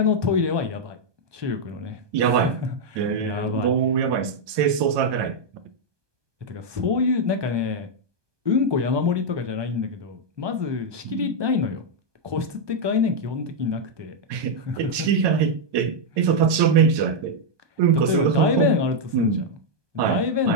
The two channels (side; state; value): left; late; 1.2 ms